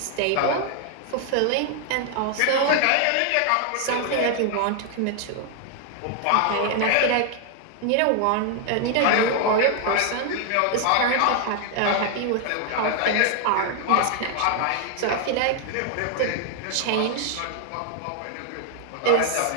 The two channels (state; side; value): different; both; correlation 0.00